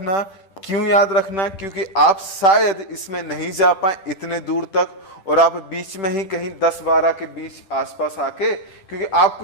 क्यों याद रखना, क्योंकि आप शायद इसमें नहीं जा पाए इतने दूर तक, और आप बीच में ही कहीं 10-12 के बीच आसपास आके, क्योंकि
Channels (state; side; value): late; right; 10 ms